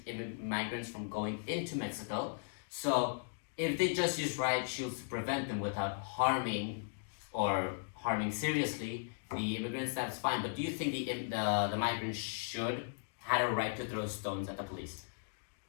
migrants from going into Mexico. So, if they just use riot shields to prevent them without harming seriously the immigrants, that's fine. But do you think the migrants should had a right to throw stones at the police?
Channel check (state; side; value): silent; right; digital silence